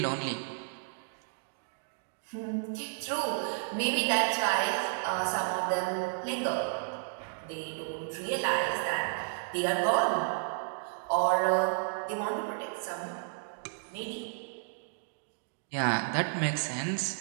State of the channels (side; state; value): left; silent; digital silence